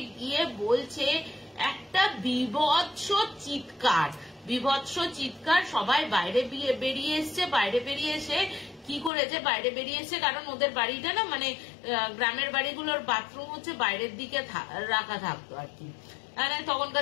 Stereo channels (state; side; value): drops out; right; at 9.1 s